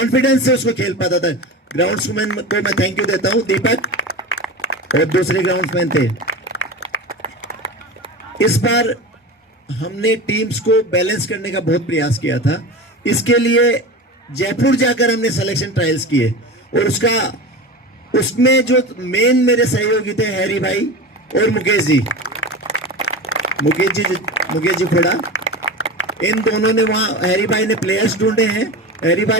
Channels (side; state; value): both; normal; correlation 0.28